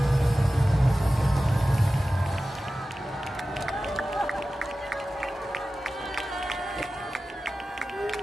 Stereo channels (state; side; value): normal; both; correlation 0.95